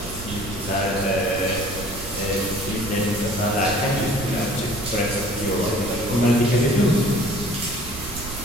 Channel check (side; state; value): right; noise; rumble, 11 dB below the sound